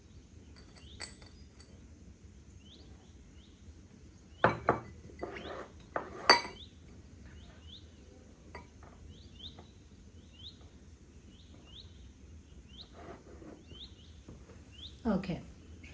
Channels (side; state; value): both; identical; correlation 1.00